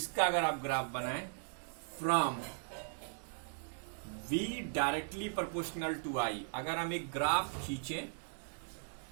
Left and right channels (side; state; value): left; silent; digital silence